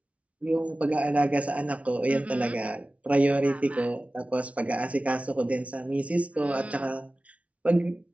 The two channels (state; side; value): late; left; 0.065 ms